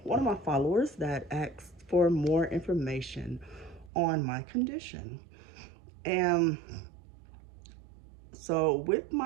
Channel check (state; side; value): drops out; left; at 3.9 s